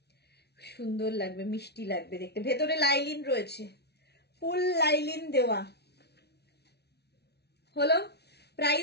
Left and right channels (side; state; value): right; late; 0.49 ms